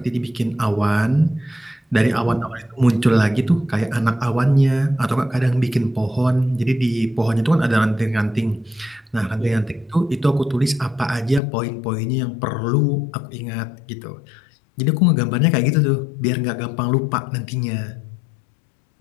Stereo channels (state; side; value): drops out; right; at 11.4 s